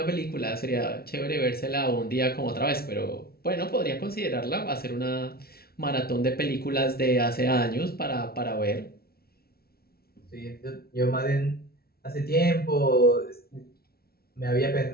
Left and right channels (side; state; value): right; late; 0.44 ms